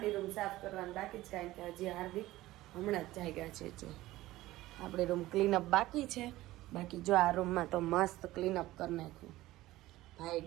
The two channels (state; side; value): quieter; left; 16.9 dB